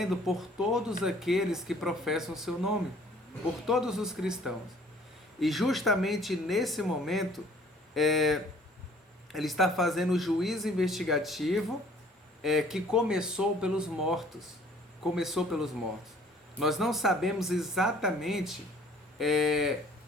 por todos aqueles que professam o seu nome, por todos os cristãos. E justamente nesse momento, ele está fazendo o juízo investigativo que começou pelos mortos. Começou pelos mortos. Nós não sabemos exatamente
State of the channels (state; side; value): normal; both; correlation 0.56